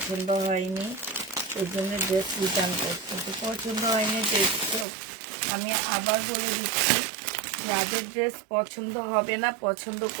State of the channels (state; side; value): drops out; left; at 4.9 s